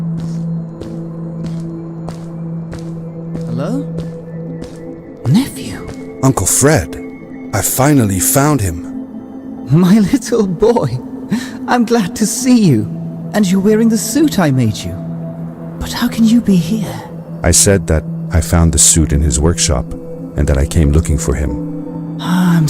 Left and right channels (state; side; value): identical; both; correlation 1.00